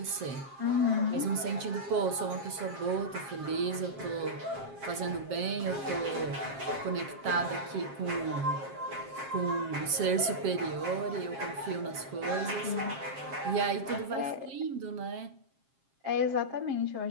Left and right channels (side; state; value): left; late; 7.5 ms